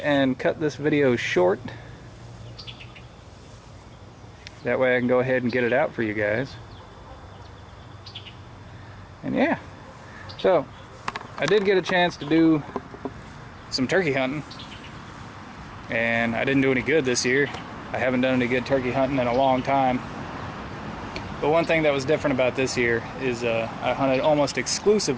cut this video short. That way I can go ahead and get it out for you guys. And yeah, so I did get a chance to do some turkey hunting, and I didn't do any good this year. I haven't done any good turkey hunting in a long time. But one thing that was different about this year is I hunted almost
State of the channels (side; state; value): both; identical; correlation 1.00